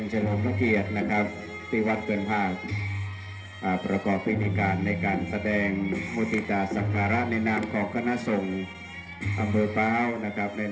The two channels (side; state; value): both; identical; correlation 1.00